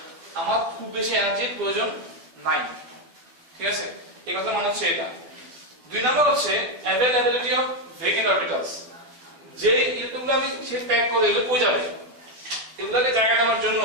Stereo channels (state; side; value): late; left; 12 ms